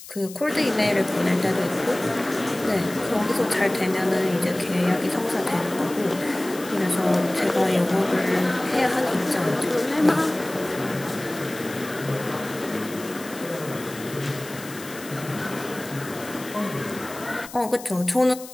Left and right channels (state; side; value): noise; left; hiss, 15 dB below the sound